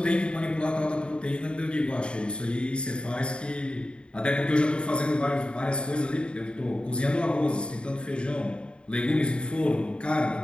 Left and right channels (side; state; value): right; late; 0.054 ms